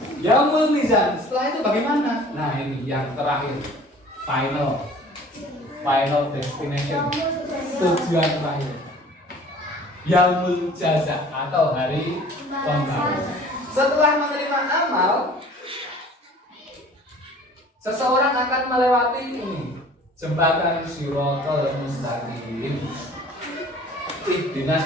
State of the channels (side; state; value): both; normal; correlation 0.48